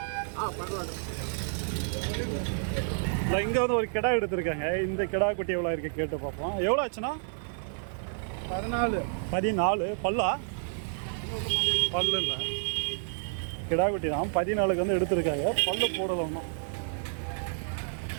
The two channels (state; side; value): silent; left; digital silence